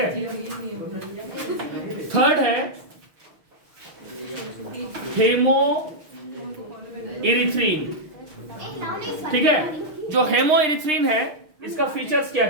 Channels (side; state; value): left; late; 6.3 ms